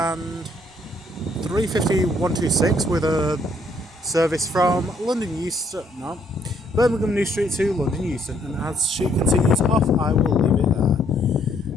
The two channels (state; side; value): normal; both; correlation 0.68